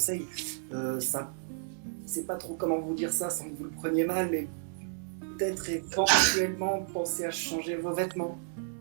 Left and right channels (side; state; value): left; silent; 57 dB below the other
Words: Ça, c'est pas trop comment vous dire ça sans que vous le preniez mal, mais peut-être éventuellement penser à changer vos vêtements.